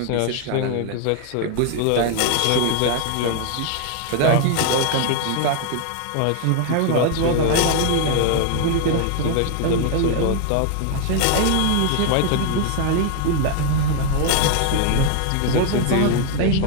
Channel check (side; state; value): both; different; correlation 0.00